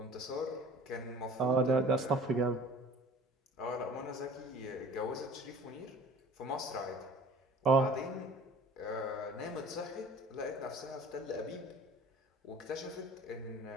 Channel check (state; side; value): normal; both; correlation 0.46